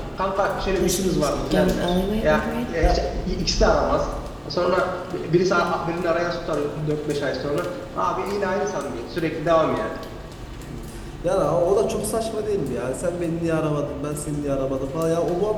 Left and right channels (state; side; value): identical; both; correlation 1.00